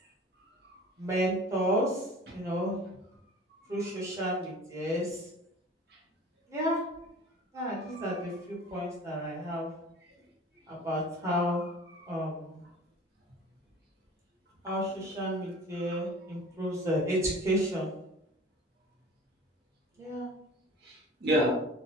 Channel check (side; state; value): both; normal; correlation 0.42